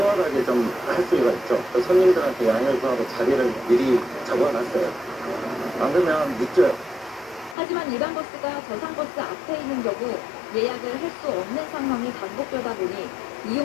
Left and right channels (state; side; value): drops out; right; at 7.6 s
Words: 좀 할 수가 있죠. 또 손님들한테 양해를 구하고 자리를 미리 잡아놨어요. 안 그러면 늦죠. 하지만 일반 버스가 저상버스 앞에 있는 경우 예약을 할 수 없는 상황이 반복되다 보니